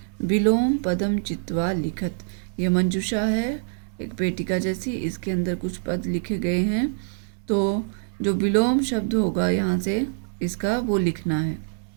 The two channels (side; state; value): left; silent; 59 dB below the other